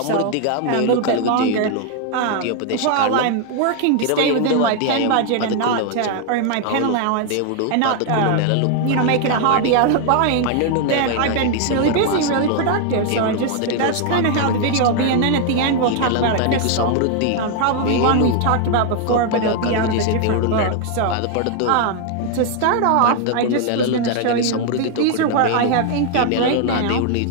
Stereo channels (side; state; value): both; different; correlation 0.00